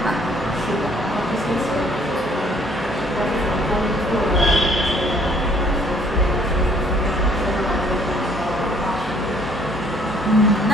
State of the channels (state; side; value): normal; both; correlation 0.61